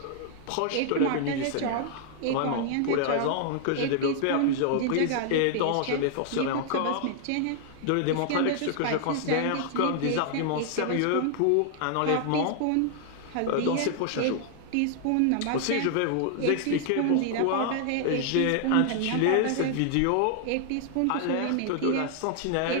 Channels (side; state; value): both; different; correlation 0.00